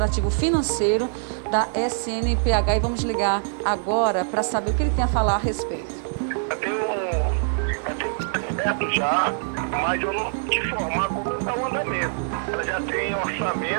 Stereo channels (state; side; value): silent; left; digital silence